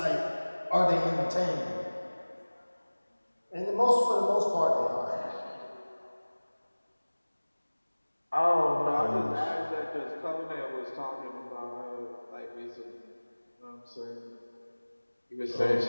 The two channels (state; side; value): inverted; both; correlation -1.00